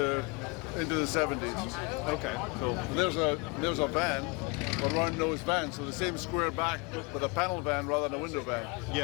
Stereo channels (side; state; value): right; quieter; 29.8 dB